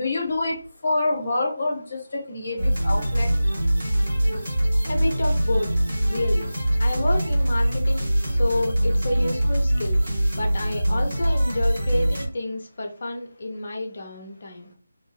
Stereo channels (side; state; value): both; inverted; correlation -0.96